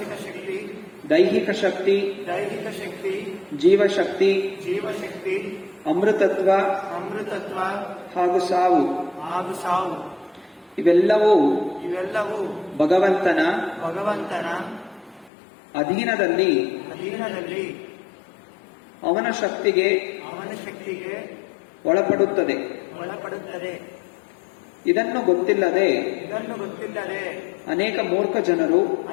ದೈಹಿಕ ಶಕ್ತಿ, ಜೀವಶಕ್ತಿ, ಅಮೃತತ್ವ ಹಾಗೂ ಸಾವು ಇವೆಲ್ಲವೂ ಭಗವಂತನ ಅಧೀನದಲ್ಲಿ ಅವನ ಶಕ್ತಿಗೆ ಒಳಪಡುತ್ತದೆ. ಇದನ್ನು ಗೊತ್ತಿಲ್ಲದೆ ಅನೇಕ ಮೂರ್ಖ ಜನರು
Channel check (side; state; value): right; drops out; at 15.3 s